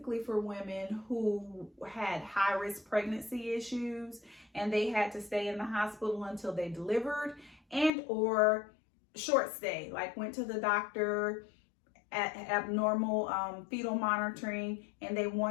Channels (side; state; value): right; drops out; at 7.9 s